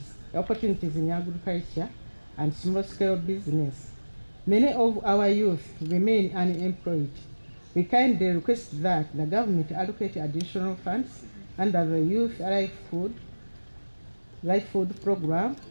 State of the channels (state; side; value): inverted; both; correlation -1.00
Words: in agriculture and small-scale business, many of our youth remain unemployed. We kindly request that the government allocate additional funds under the Youth Life Food Program,